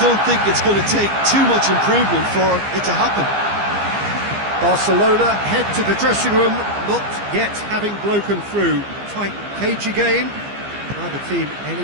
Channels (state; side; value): late; left; 15 ms